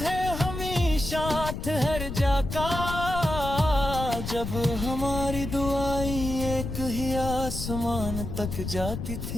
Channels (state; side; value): noise; left; rumble, 5 dB below the sound